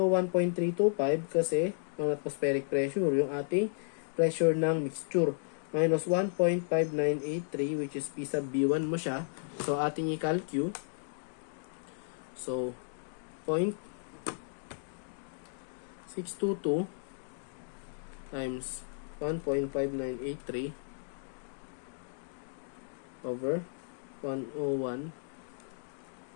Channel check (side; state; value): right; silent; digital silence